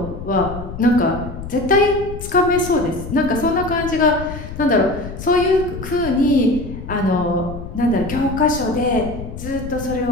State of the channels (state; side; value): noise; left; rumble, 10 dB below the sound